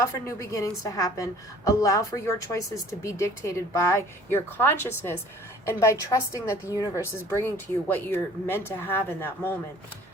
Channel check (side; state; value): both; normal; correlation 0.51